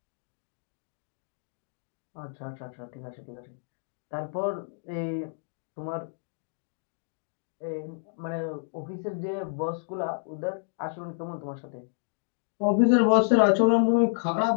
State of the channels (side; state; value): right; silent; digital silence